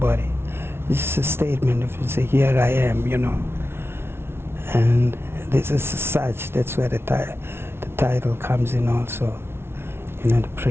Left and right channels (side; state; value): left; late; 0.12 ms